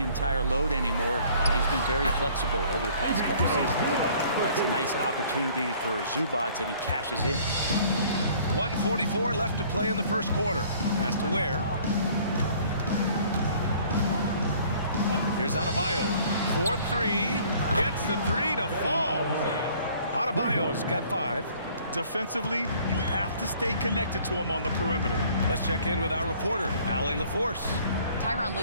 entire load anymore. He's been very flexible over the past couple seasons. That's a nice opportunity for Zubats, and he cashes in. 1:44 left to play in the first quarter. Pass to Ware. Here's Adebayo. 4-3. Gets the 3 to fall. Adebayo's got 5. Defensively, you have to stay connected to him on the perimeter. Let's check in with our reporter, Allie LaForce. Tyronn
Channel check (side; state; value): both; inverted; correlation -0.55